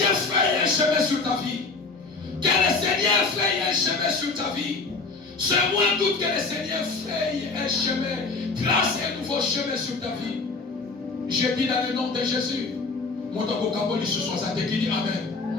fraye un chemin sur ta vie. Que le Seigneur fraye un chemin sur ta vie. Ce mois d'août, que le Seigneur fraye un chemin, trace un nouveau chemin sur ta vie. Je dis dans le nom de Jésus. Mon Kaboli ce soir, ça te dit Amen.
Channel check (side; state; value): right; quieter; 4.0 dB